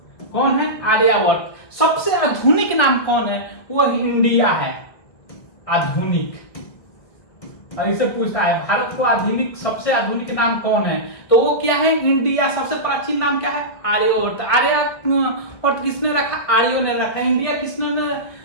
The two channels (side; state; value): right; late; 1.8 ms